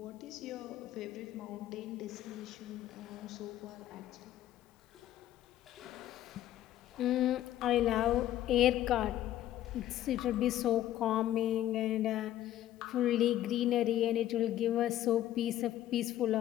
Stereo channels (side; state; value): right; quieter; 13.0 dB